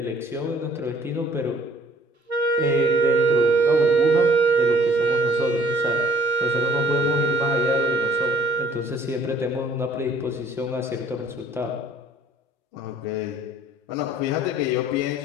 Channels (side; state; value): both; normal; correlation 0.56